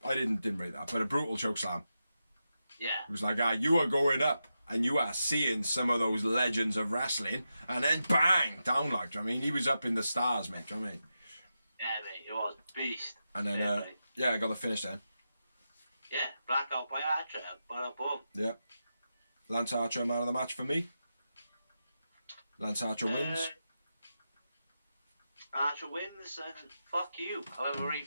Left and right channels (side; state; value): both; inverted; correlation -0.89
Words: I didn't rate that, but a brutal choke slam. Yeah. It was like, you are going up and you are seeing some of those legends of wrestling, and then bang down, like. Do you know what I mean? He was up in the stars, mate. Do you know what I mean? Yeah, mate, it was beast. And then yeah, I got the finish then. Yeah, blackout by Archer. Bada boom. Yeah. Lance Archer, man of the match for me. Lance Archer wins. Archer wins, and fuck you, however he